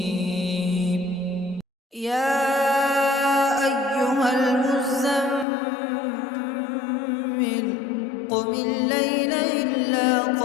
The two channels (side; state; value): right; drops out; at 5.5 s